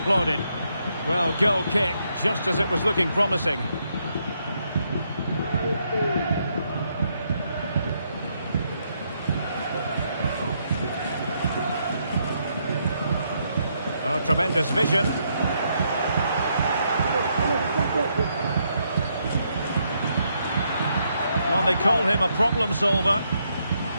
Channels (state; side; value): inverted; both; correlation -0.76